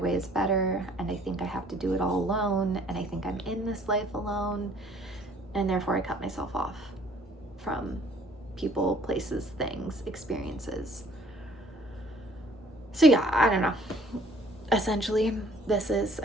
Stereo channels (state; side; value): normal; both; correlation 0.58